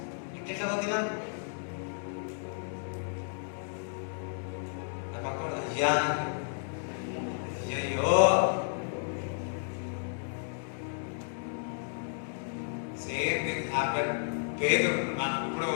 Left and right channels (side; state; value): right; silent; digital silence